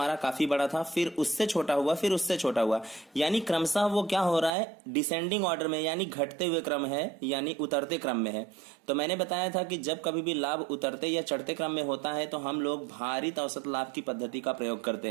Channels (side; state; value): left; drops out; at 4.5 s